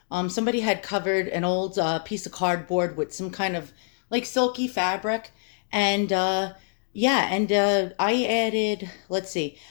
Somebody had covered an old piece of cardboard with some kind of like silky fabric, and yeah, and I added, let's see,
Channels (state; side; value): silent; right; digital silence